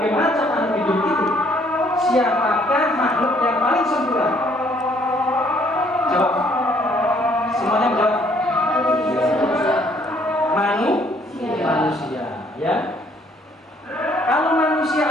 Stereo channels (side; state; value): both; normal; correlation 0.64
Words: macam makhluk hidup itu, siapakah makhluk yang paling sempurna? Jawab. Semuanya jawab. Manusia, ya. Kalau manusia